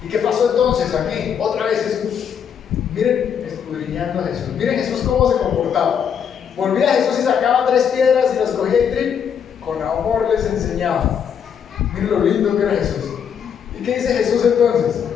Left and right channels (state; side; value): quieter; right; 7.8 dB